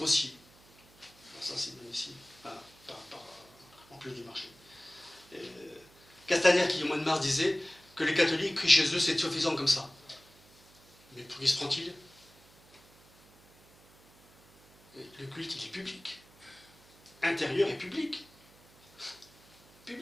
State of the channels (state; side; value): noise; right; hum, 27 dB below the sound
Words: Alors ça, c'est magnifique. En plus du marché. Castaner, qui au mois de mars disait que les catholiques crient chez eux, c'est suffisant comme ça. Mais pour qui se prend-il? Le culte, il est public. Intérieur et public.